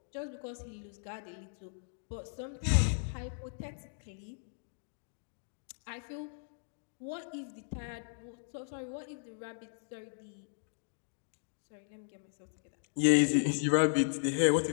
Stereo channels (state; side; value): silent; right; digital silence